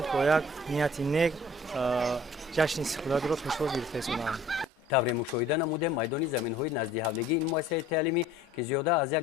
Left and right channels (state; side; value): normal; both; correlation 0.51